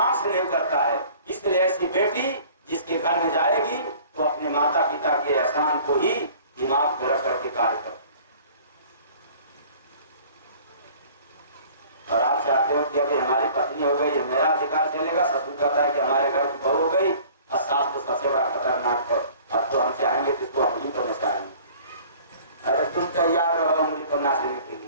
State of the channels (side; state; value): both; inverted; correlation -0.49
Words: से नहीं करता है, इसलिए ऐसी बेटी जिसके घर में जाएगी तो अपने माता पिता के एहसान को ही दिमाग में रख करके कार्य करती। और आप चाहते हो कि अभी हमारी पत्नी हो गई, मेरा अधिकार चलेगा। ससुर कहता है कि हमारे घर की बहू हो गई, और सास तो सबसे बड़ा खतरनाक है, अब तो हम चाहेंगे तो इसको उंगली पर नचाएंगे। अरे तुम तैयार रहो उंगली पर नाचने के